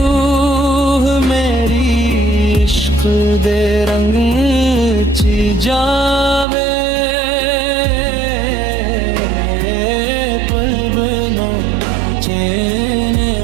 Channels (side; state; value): left; drops out; at 6.5 s